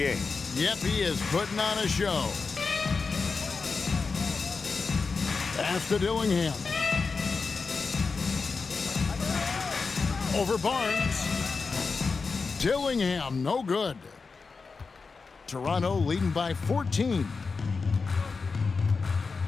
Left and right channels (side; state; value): right; quieter; 4.6 dB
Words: Yep, he is putting on a show. Pass to Dillingham. Over Barnes. Dillingham, no good. Toronto leading by 14.